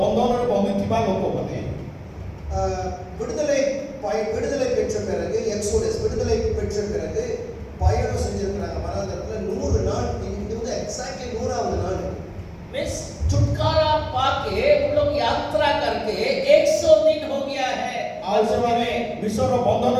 ବନ୍ଦିଥିବା ଲୋକମାନେ விடுதலை பெற்ற பிறகு எக்ஸோடஸ் விடுதலை பெற்ற பிறகு பயணம் செஞ்சிருக்கிறாங்க வனாந்தரத்துல 100 நாள். இது வந்து எக்ஸாக்ட்லி 100வது நாள். मिस छुटकारा पाके उन लोग यात्रा करके 100 दिन हो गया है। ଆଉ ସେମାନେ ବିଶ୍ୱର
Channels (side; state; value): both; identical; correlation 1.00